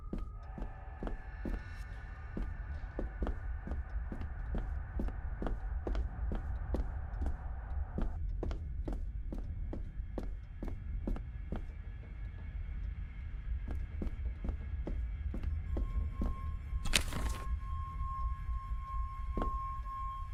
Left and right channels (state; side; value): identical; both; correlation 1.00